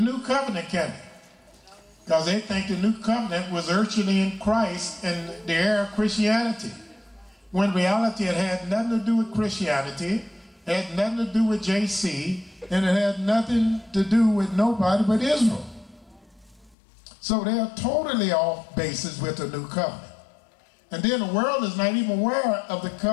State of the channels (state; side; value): drops out; right; at 16.8 s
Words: covenant, can they? Because they think the new covenant was urgently in Christ and the era of Christianity. When in reality it had nothing to do with Christianity, it had nothing to do with JC, and it had nothing to do with nobody but Israel. So they are totally off basis with the new covenant. And then the world is not even aware of the